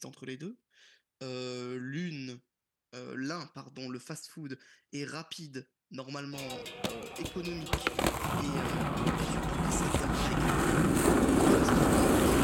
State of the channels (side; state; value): both; identical; correlation 1.00